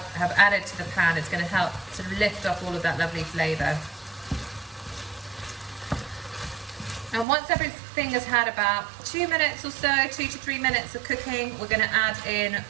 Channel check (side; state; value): left; drops out; at 7.2 s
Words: added to the pan, it's going to help sort of lift off all of that lovely flavour. And once everything has had about 2 minutes or so, 2 to 3 minutes of cooking, we're going to add in